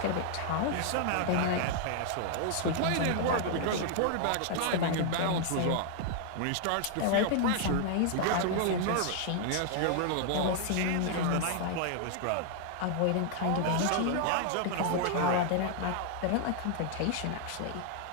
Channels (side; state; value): both; different; correlation 0.00